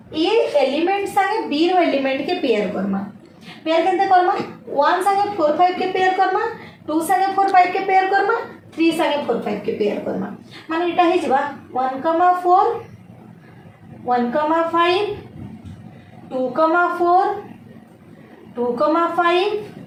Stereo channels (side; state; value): both; identical; correlation 1.00